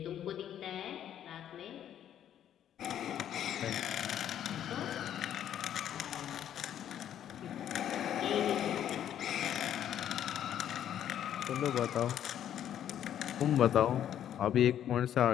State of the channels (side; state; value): right; quieter; 10.4 dB